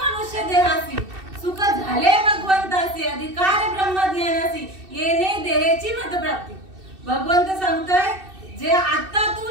देहासी सुख झाले भगवंतासी, अधिकार ब्रह्मज्ञानासी येणे देहाची मतप्राप्ती. भगवंत सांगतोय जे आता तू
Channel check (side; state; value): left; late; 2.6 ms